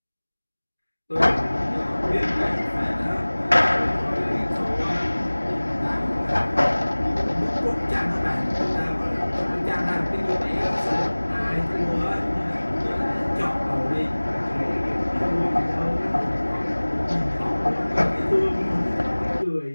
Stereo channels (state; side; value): inverted; both; correlation -1.00